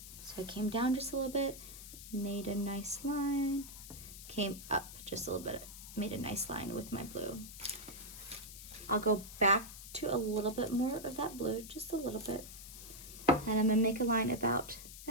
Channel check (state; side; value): noise; left; hiss, 13 dB below the sound